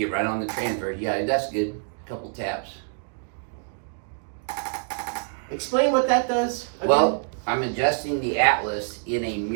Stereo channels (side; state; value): left; silent; 61 dB below the other